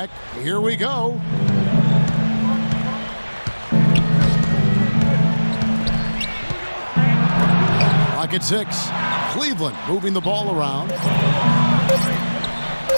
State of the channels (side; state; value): both; inverted; correlation -1.00